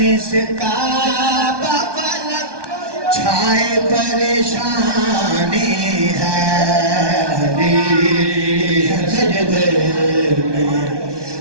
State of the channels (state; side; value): late; left; 1.2 ms